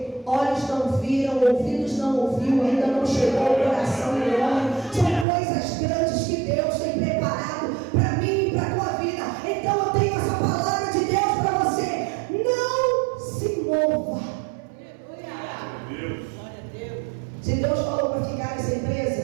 ouviram, ouvidos não ouviu, ainda não chegou ao coração do homem. São coisas grandes que Deus tem preparado para mim e para a tua vida. Então eu tenho essa palavra de Deus para você. Não se mova. Se Deus falou para ficar nessa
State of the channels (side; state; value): left; drops out; at 5.2 s